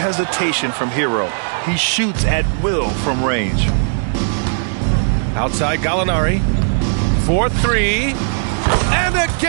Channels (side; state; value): left; silent; digital silence